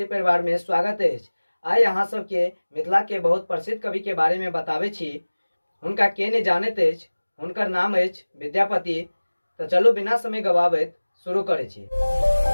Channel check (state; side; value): inverted; both; correlation -1.00